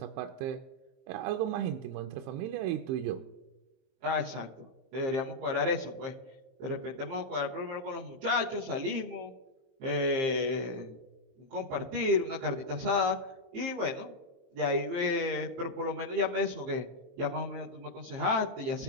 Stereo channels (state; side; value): late; left; 23 ms